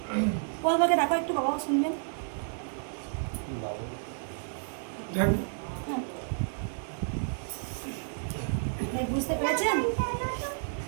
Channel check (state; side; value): silent; left; digital silence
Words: বলবাকে দেখো একটু, বাবাও শুনবেন। বুঝতে পেরেছেন?